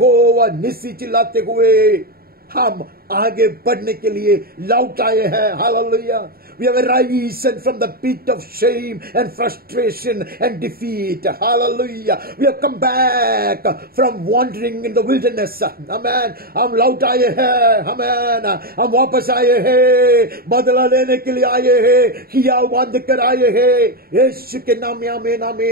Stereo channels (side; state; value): left; late; 0.44 ms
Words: निस्सी चिल्लाते हुए हम आगे बढ़ने के लिए लौट आए हैं। Hallelujah. We have arisen from the pit of shame and frustration and defeat. Hallelujah. We have come back from wandering in the wilderness. Amen. हम लौट आए हैं। Amen. हम वापस आए हैं, बदला लेने के लिए आए हैं, किया बांध कर आए हैं। यीशु के नाम में आमीन,